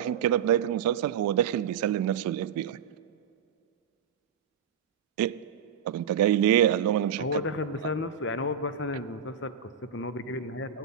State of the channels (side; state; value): left; quieter; 7.6 dB